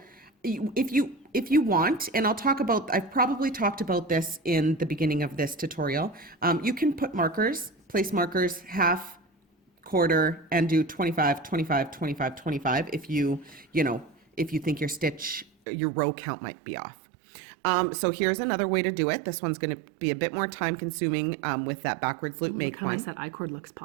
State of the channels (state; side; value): drops out; left; at 15.5 s